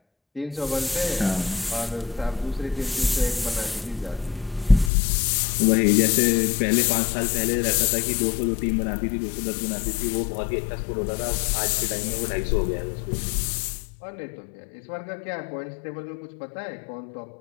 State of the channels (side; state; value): right; drops out; at 4.9 s